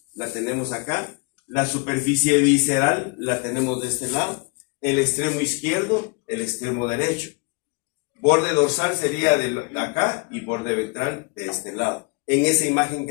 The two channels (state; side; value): quieter; right; 32.1 dB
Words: la tenemos acá. La superficie visceral la tenemos de este lado. El extremo izquierdo, el extremo derecho. Borde dorsal sería de acá y borde ventral de este lado. En esa imagen